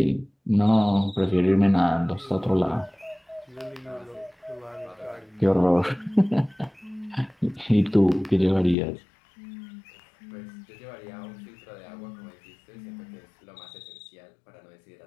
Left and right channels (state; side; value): drops out; right; at 8.8 s